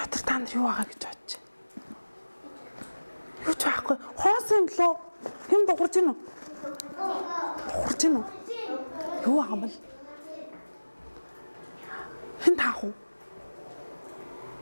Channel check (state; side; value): inverted; both; correlation -1.00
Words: та нар юу байгаа гэж бодож байна? Юу ч байхгүй. Хоос юм болоо. Хэн дуурж гин үү? Дуурж гин үү? Юу байгаа юм бол? Хэн таах уу?